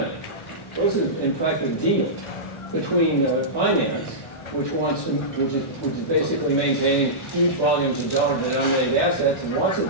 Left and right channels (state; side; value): late; right; 1.1 ms